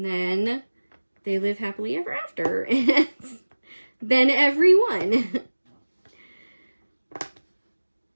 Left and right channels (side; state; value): both; inverted; correlation -1.00